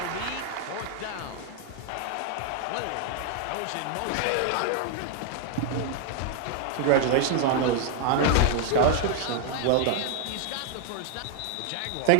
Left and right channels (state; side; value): different; both; correlation 0.00